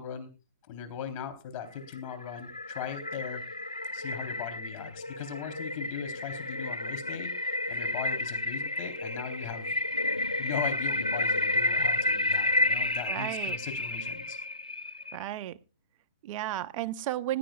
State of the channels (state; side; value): inverted; both; correlation -0.40